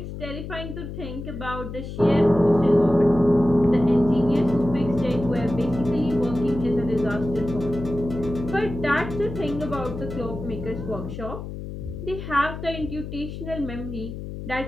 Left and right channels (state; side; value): noise; left; hum, 9 dB below the sound